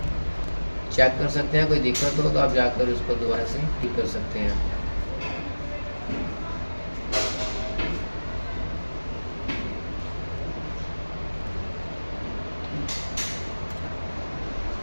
चेक कर सकते हैं। कोई दिक्कत हो तो आप जाकर उसको दोबारा से ठीक कर सकते हैं।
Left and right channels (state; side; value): inverted; both; correlation -1.00